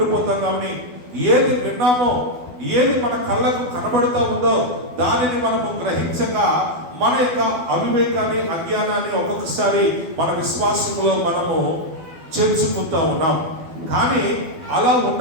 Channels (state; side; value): late; left; 12 ms